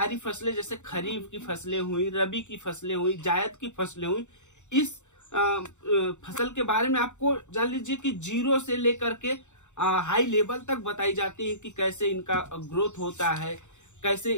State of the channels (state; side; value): late; right; 0.84 ms